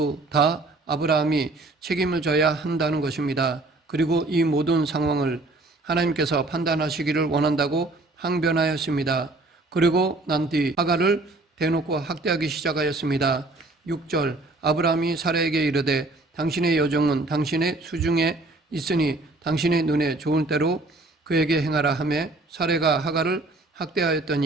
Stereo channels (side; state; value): left; quieter; 3.0 dB